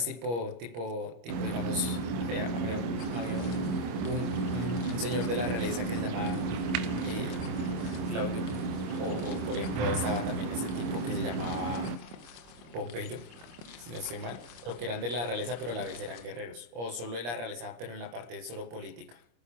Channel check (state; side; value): late; left; 25 ms